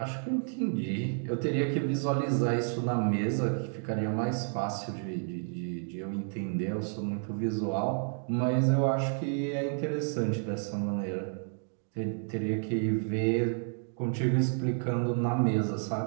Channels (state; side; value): silent; left; 57 dB below the other